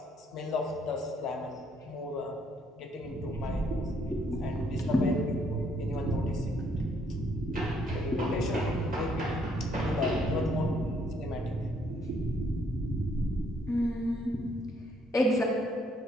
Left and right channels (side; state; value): both; normal; correlation 0.69